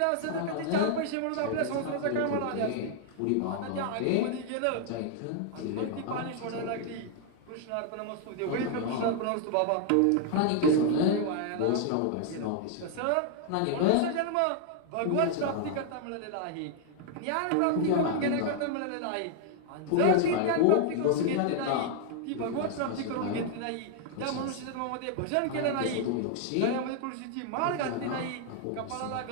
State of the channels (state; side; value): different; both; correlation 0.00